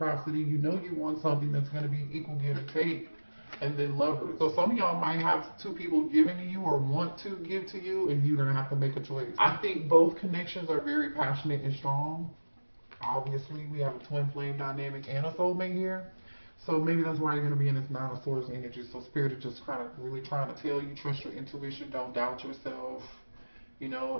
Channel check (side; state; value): both; inverted; correlation -1.00